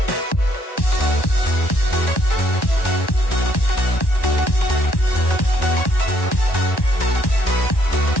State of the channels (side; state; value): right; late; 1.1 ms